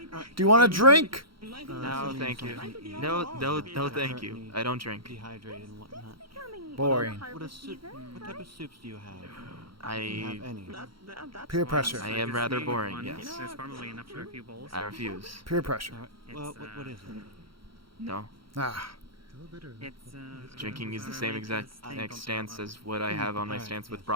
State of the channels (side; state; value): left; late; 0.74 ms